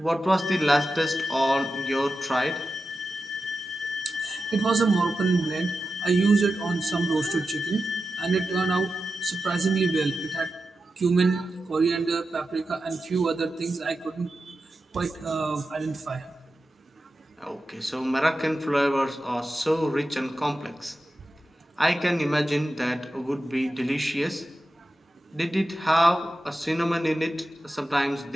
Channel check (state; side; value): normal; both; correlation 0.91